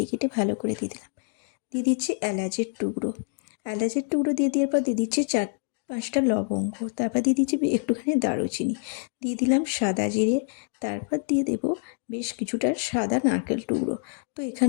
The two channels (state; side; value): silent; right; 59 dB below the other